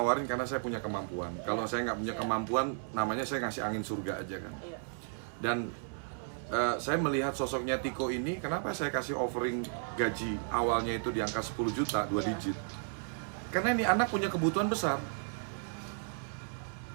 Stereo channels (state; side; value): silent; left; 55 dB below the other